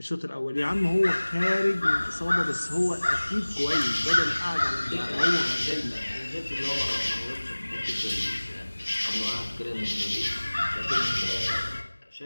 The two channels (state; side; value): inverted; both; correlation -1.00